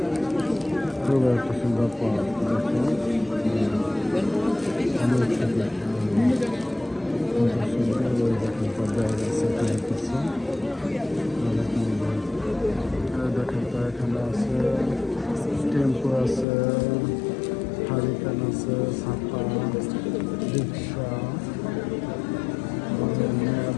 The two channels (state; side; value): drops out; right; at 16.4 s